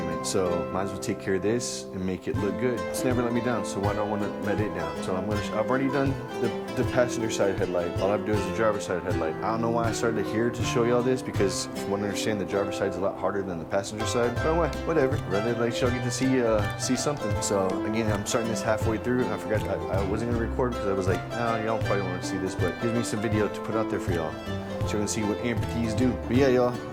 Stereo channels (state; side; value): identical; both; correlation 1.00